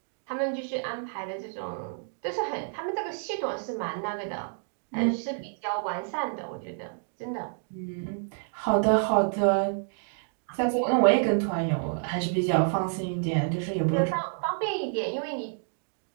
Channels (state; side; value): silent; left; digital silence